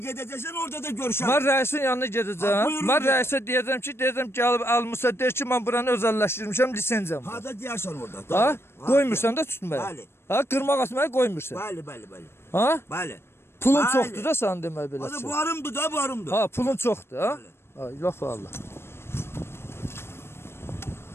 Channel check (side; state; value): right; late; 0.12 ms